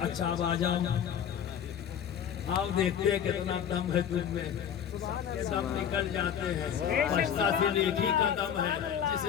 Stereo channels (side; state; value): right; quieter; 8.7 dB